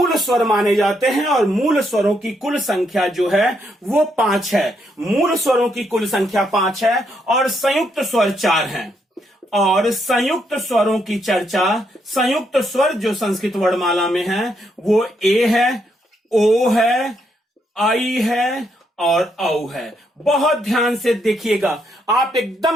स्वर माने जाते हैं। और मूल स्वरों की कुल संख्या जो है वो 5 है। मूल स्वरों की कुल संख्या 5 है और संयुक्त स्वर 4 हैं। और संयुक्त स्वरों की चर्चा, संयुक्त स्वर जो संस्कृत वर्णमाला में है वो ए है, ओ है, आई है और औ है। बहुत ध्यान से देखिएगा, आप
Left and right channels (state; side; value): normal; both; correlation 0.76